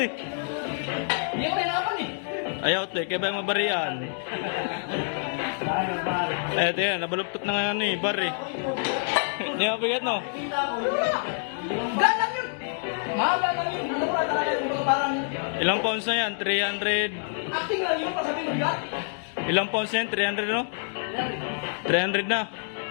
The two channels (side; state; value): right; silent; digital silence